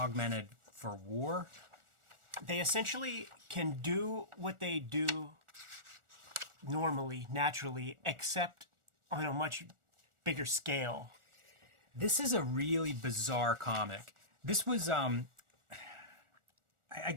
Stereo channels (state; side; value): late; left; 1.4 ms